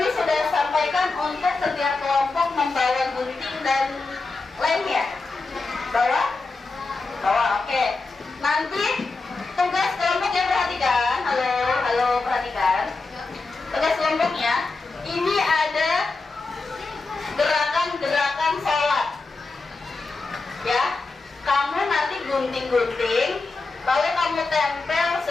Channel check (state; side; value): quieter; right; 3.8 dB